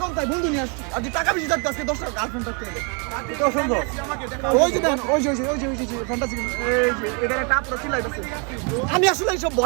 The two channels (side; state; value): left; quieter; 36.1 dB